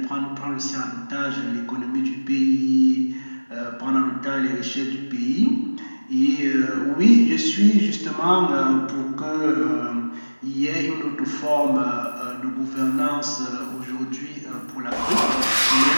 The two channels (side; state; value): both; inverted; correlation -1.00